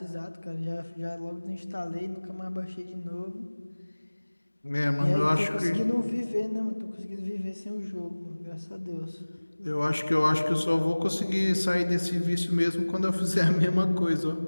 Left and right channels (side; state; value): both; inverted; correlation -1.00